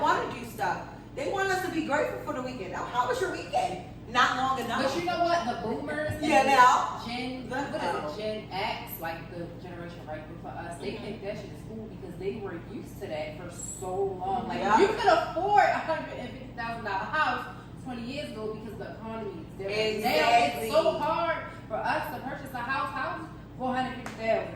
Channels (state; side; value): identical; both; correlation 1.00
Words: want to do stuff. They want us to be grateful for the weekend. Now, how was your weekend? Not long enough. But you know what? The boomers and Yeah, now. what is it? Gen X, like the generation right before us, they think that shit is cool because they were used to that for so long. Like Yeah. you could afford $150,000 house 20 years ago because the economy is different. Now Exactly. it's so hard for us to purchase a house